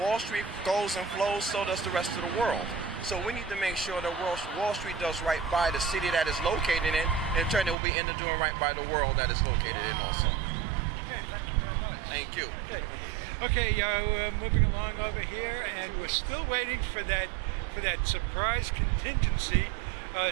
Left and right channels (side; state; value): left; drops out; at 7.8 s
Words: Street goes and flows, so does the rest of the world. So we need to make sure that Wall Street does right by the city that it's located in, and in turn it will be into doing right by the world that it's located in also. Okay, thank you very much. Thank you. Okay, we're moving along over here, and we're still waiting for that surprise contingency